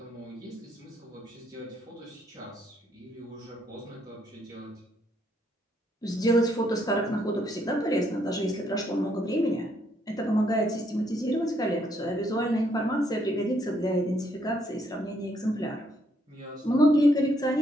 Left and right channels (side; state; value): both; normal; correlation 0.72